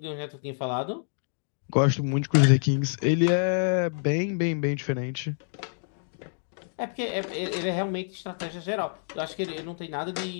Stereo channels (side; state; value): right; silent; digital silence